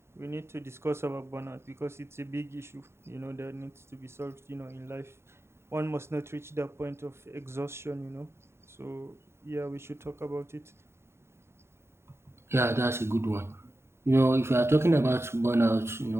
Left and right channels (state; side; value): late; left; 0.12 ms